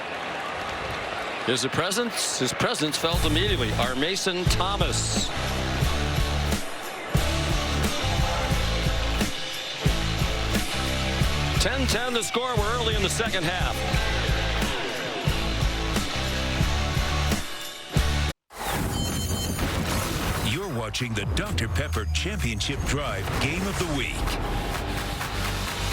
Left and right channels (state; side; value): identical; both; correlation 1.00